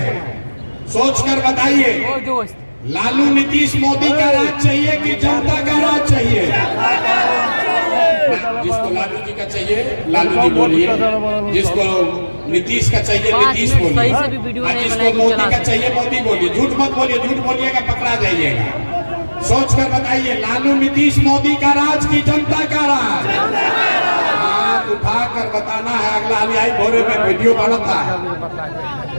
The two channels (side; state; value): both; inverted; correlation -1.00